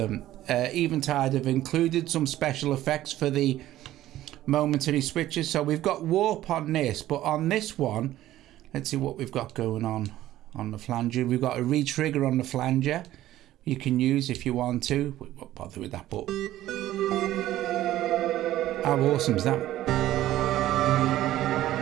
Eventide have included some special effects for the momentary switches. So we've got warp on this, but on this one, let's see what we've got going on the flanger. We've got a retrigger on the flanger. You can use if you want to. We won't bother with that, but how awesome is that?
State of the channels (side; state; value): left; quieter; 14.2 dB